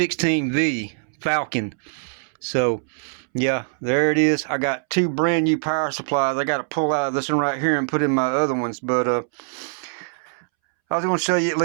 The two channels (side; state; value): left; silent; 64 dB below the other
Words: Falcon. So, yeah, there it is. I got two brand new power supplies. I got to pull out of this one right here and put in my other ones. But I was going to show you at